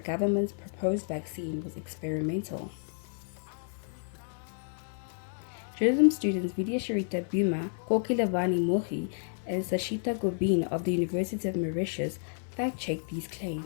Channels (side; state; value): right; silent; 57 dB below the other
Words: proposed vaccine was experimental. Journalism students Vidya Sharita Buma, Kokilevani Mohi, and Sashita Gobin of the University of Mauritius fact-checked these